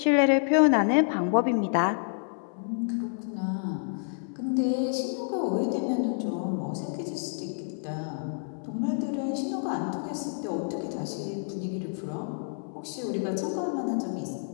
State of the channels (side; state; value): right; silent; 59 dB below the other